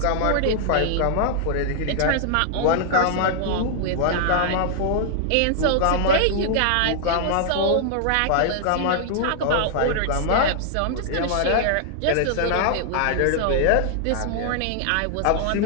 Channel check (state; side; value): different; both; correlation -0.01